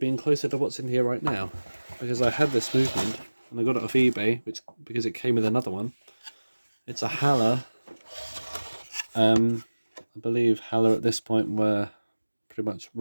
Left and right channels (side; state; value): both; inverted; correlation -1.00